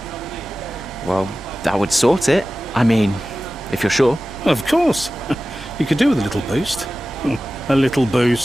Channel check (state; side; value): normal; both; correlation 0.95